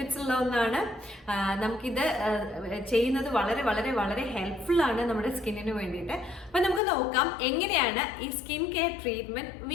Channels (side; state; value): right; drops out; at 6.8 s